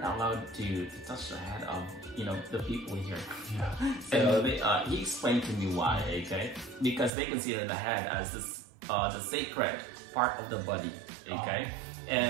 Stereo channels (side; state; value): left; drops out; at 7.1 s